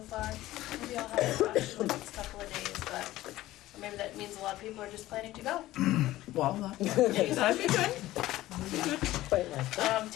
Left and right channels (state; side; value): quieter; right; 16.1 dB